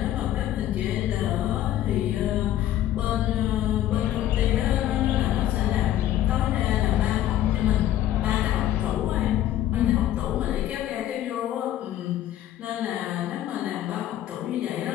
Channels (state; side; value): quieter; right; 12.7 dB